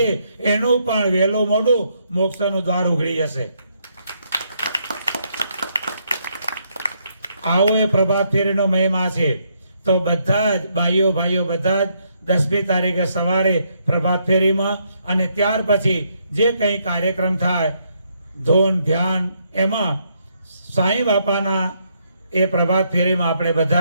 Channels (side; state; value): both; inverted; correlation -0.74